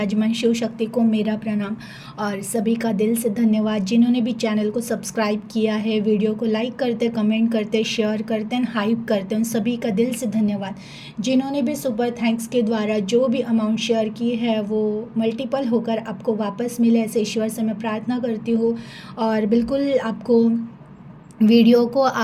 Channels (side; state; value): both; identical; correlation 1.00